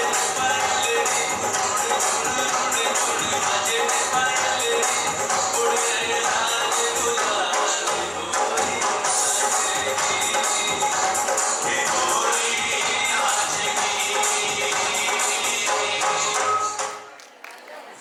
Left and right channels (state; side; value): identical; both; correlation 1.00